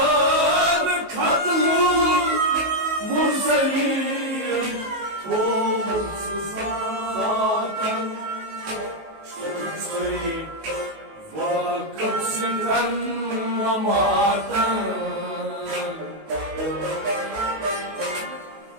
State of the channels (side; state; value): left; late; 19 ms